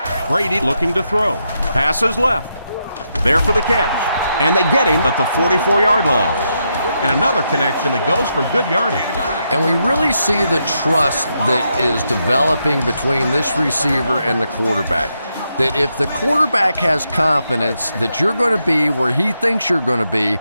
Brady looking to throw. Passes left. There for the catch. And they get him at the 44-yard line. And another connection that goes for good yardage. And we really see the trust that is developing between this receiver and the quarterback. That if the quarterback has confidence that you're going to be where he thinks you're going to be,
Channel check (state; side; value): inverted; both; correlation -0.82